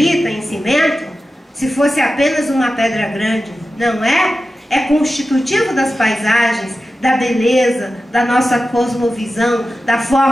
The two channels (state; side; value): normal; both; correlation 0.93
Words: em cimento, se fosse apenas uma pedra grande. Não é? É constitutivo das paisagens, da beleza, da nossa cosmovisão, da